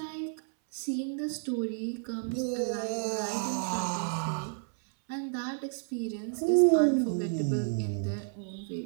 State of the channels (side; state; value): left; silent; 57 dB below the other